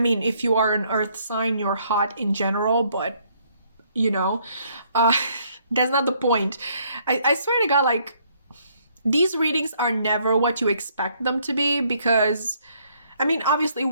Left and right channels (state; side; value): inverted; both; correlation -0.67